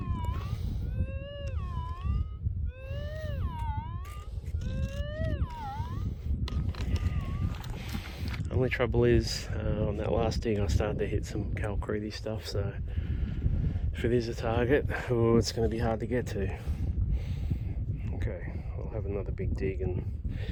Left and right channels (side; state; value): both; identical; correlation 1.00